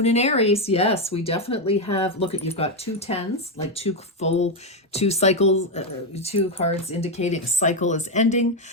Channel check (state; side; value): normal; both; correlation 0.05